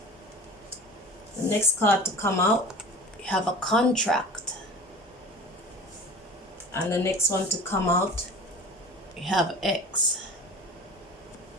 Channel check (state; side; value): normal; both; correlation 0.39